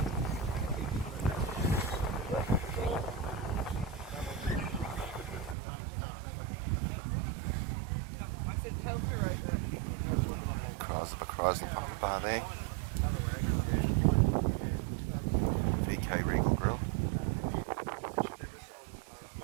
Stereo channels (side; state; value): left; drops out; at 5.6 s